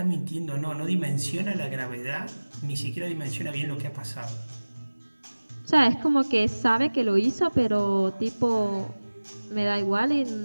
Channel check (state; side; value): inverted; both; correlation -1.00